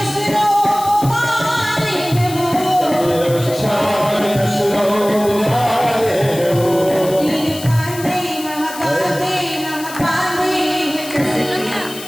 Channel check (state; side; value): noise; left; hiss, 13 dB below the sound